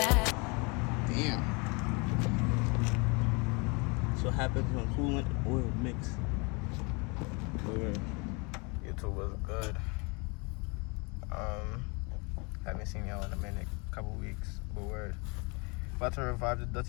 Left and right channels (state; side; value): quieter; right; 30.4 dB